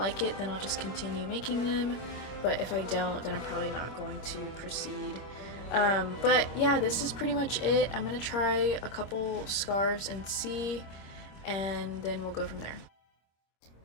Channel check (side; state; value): right; late; 25 ms